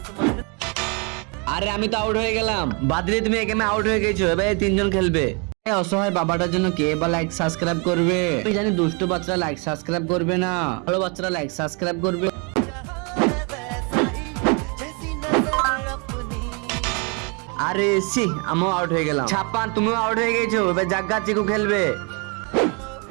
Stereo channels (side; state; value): left; quieter; 33.4 dB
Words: আরে আমি তো আউট হয়ে গেলাম। বাদরি তুমি এই গেমে আউট হয়ে গেছো, এবারে তিনজন খেলবে। এই অসহায় বাবাটার জন্য কে বা লাইক সাবস্ক্রাইব করবে? আমি জানি দুষ্ট বাচ্চারা লাইক সাবস্ক্রাইব করবে না, ভালো বাচ্চারা লাইক সাবস্ক্রাইব করবে। আরে সি, আমিও আউট হয়ে গেলাম। ছাপ্পান তুমিও আউট হয়ে গেছো, এবার জাগ্গা চিকু খেলবে।